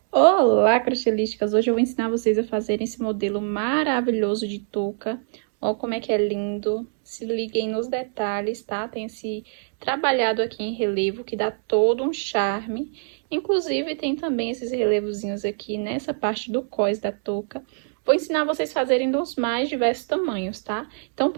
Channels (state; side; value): silent; left; digital silence